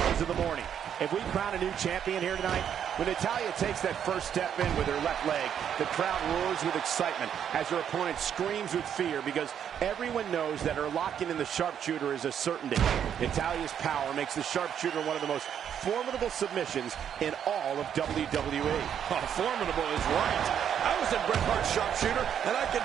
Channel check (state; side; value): quieter; left; 8.9 dB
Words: of the morning. If we crown a new champion here tonight, when Natalya takes that first step in with her left leg, the crowd roars with excitement as her opponent screams with fear because everyone knows that her locking in the sharpshooter is a certainty. Natalya's power makes the sharpshooter one of the most formidable submissions in all of WWE. Oh, formidable is right. I was in Bret Hart's sharpshooter, and I can